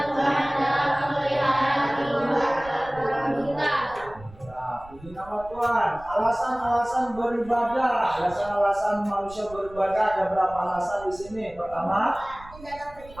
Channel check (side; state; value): right; noise; rumble, 20 dB below the sound